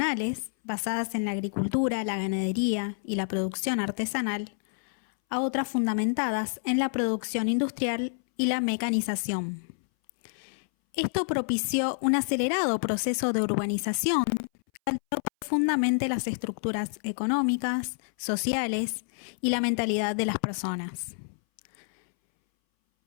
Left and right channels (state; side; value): silent; right; 59 dB below the other